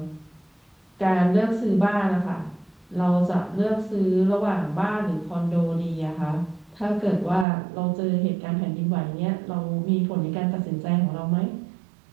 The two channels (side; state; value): left; drops out; at 7.5 s